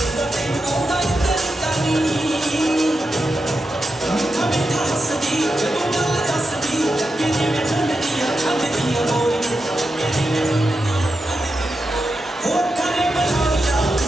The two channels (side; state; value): both; normal; correlation 0.88